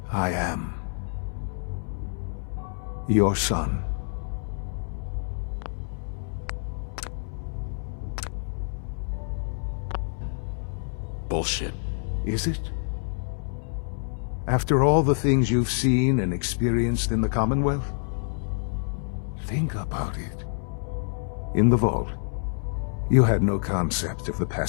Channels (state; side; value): silent; right; 60 dB below the other